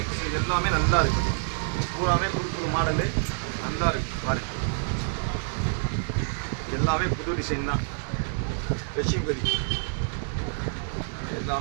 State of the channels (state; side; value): silent; left; digital silence